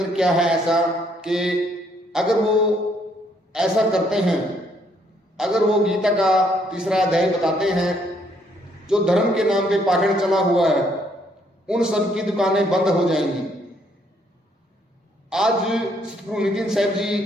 क्या है ऐसा कि अगर वो ऐसा करते हैं, अगर वो गीता का तीसरा अध्याय बताते हैं, जो धर्म के नाम पे पाखंड चला हुआ है, उन सब की दुकानें बंद हो जाएंगी। आज सतगुरु नितिन साहब जी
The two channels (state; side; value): normal; both; correlation 0.69